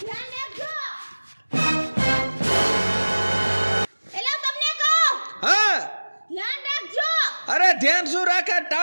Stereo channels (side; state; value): both; inverted; correlation -1.00